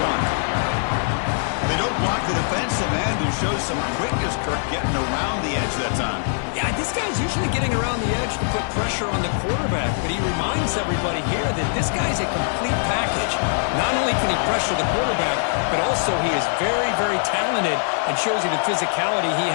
They don't block the defensive end, who shows some quickness, Kirk, getting around the edge that time. Yeah, this guy's usually getting around the edge to put pressure on the quarterback, but he reminds everybody here that this guy's a complete package. Not only can he pressure the quarterback, but also he is very, very talented and shows you the physicality he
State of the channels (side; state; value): right; silent; 60 dB below the other